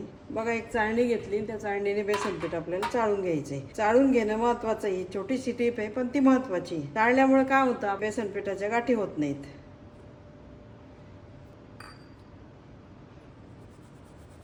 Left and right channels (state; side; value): identical; both; correlation 1.00